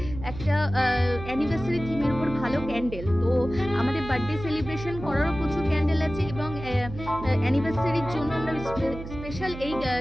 একটা অ্যানিভার্সারি থিমের উপর ভালো ক্যান্ডেল। তো আমাদের বার্থডে সেলিব্রেশন করারও প্রচুর ক্যান্ডেল আছে এবং অ্যানিভার্সারির জন্য আমরা স্পেশাল এই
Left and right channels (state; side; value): noise; right; hum, 10 dB below the sound